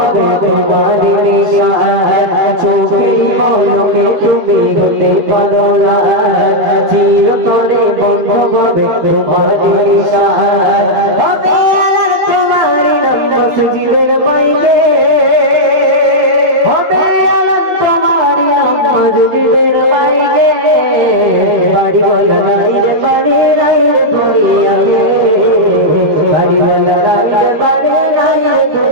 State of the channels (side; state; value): left; late; 13 ms